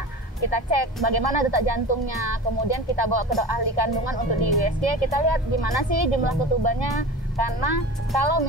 Kita cek bagaimana detak jantungnya, kemudian kita bawa ke ahli kandungan untuk di USG, kita lihat gimana sih jumlah ketubannya, karena kalau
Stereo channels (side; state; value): both; normal; correlation 0.33